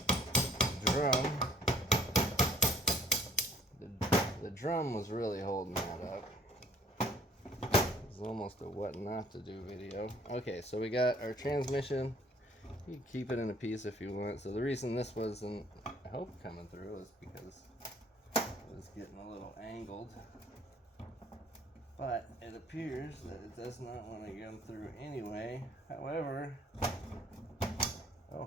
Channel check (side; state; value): both; normal; correlation 0.57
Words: drum, the drum was really holding that up. It was almost a what not to do video. Okay, so we got our transmission. You can keep it in a piece if you want. So the reason this wasn't, I hope, coming through is because it was getting a little angled. But it appears that it does not want to come through anyway. However,